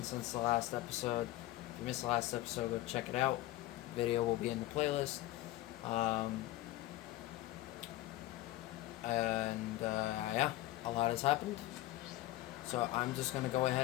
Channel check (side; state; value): right; quieter; 16.4 dB